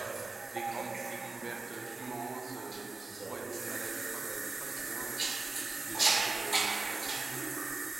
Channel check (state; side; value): quieter; left; 3.6 dB